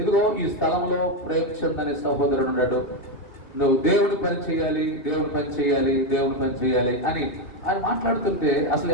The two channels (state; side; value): late; right; 2.7 ms